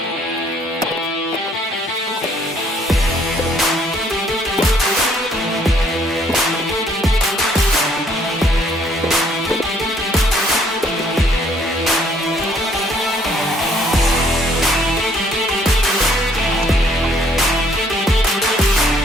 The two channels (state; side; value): normal; both; correlation 0.63